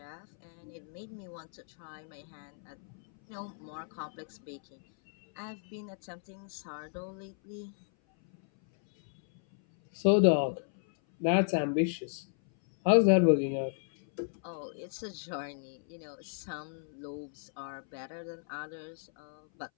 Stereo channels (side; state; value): right; silent; 55 dB below the other